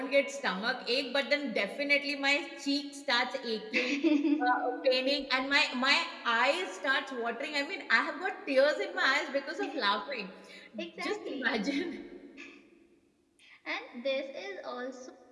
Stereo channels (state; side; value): identical; both; correlation 1.00